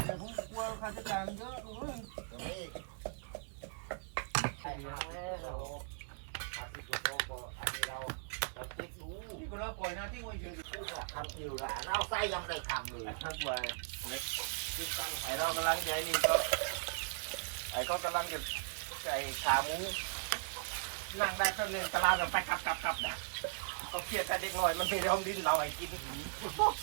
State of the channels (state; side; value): silent; left; 52 dB below the other